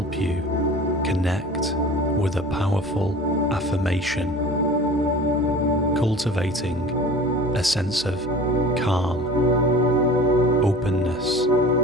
you connect with a powerful affirmation, cultivating a sense of calm, openness,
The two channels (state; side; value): normal; both; correlation 0.40